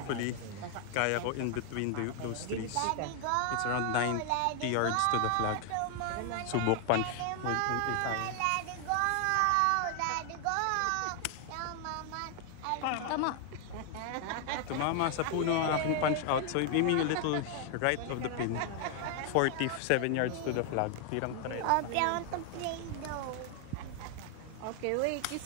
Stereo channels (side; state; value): both; different; correlation 0.00